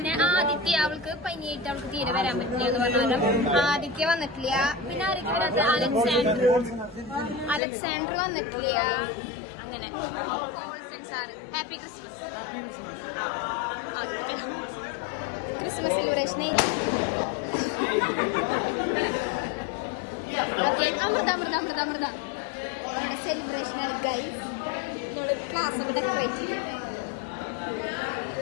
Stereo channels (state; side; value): drops out; right; at 7.6 s